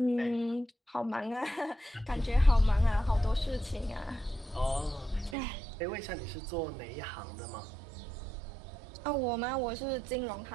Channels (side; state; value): left; drops out; at 5.4 s